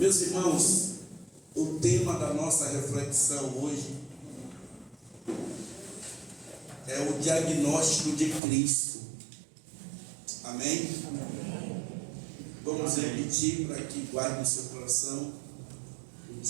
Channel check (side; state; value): left; drops out; at 8.4 s